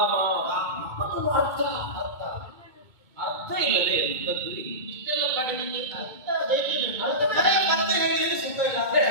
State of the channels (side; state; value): left; late; 2.2 ms